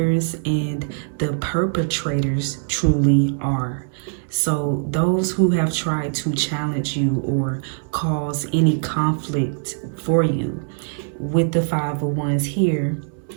and the perpetrators truly are. So those who have tried to challenge you or cause any conflict for you, with the Five of Wands here,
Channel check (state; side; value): silent; left; 64 dB below the other